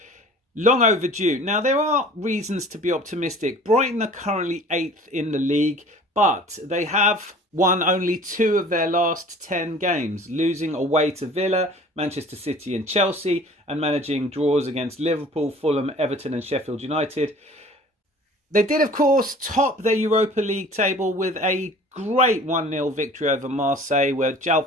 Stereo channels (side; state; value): both; normal; correlation 0.47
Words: Long overdue. Now, there are reasons to be optimistic. Brighton are currently 8th in the league, but they have won only 2 of their last 10 games, losing away to Villa, Manchester City and Chelsea, and managing draws against Liverpool, Fulham, Everton and Sheffield United. They did, of course, top their Europa League table with a great 1-0 victory over Marseille, where